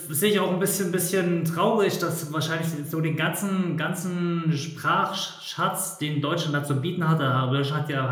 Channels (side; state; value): both; identical; correlation 1.00